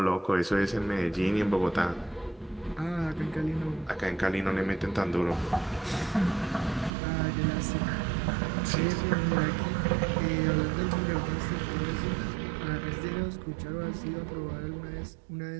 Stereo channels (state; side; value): drops out; left; at 6.9 s